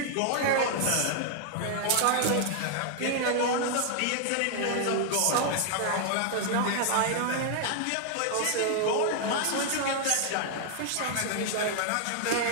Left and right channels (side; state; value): both; different; correlation 0.00